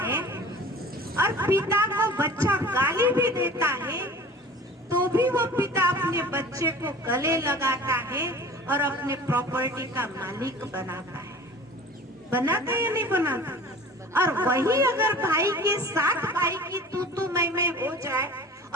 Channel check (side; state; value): both; normal; correlation 0.42